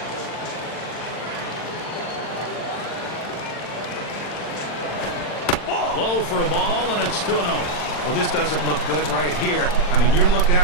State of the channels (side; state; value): right; late; 40 ms